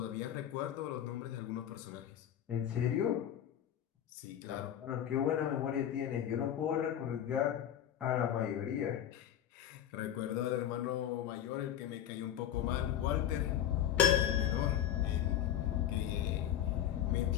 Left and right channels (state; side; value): quieter; right; 10.6 dB